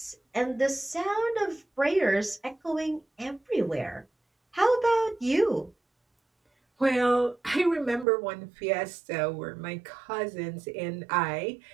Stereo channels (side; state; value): left; drops out; at 8.1 s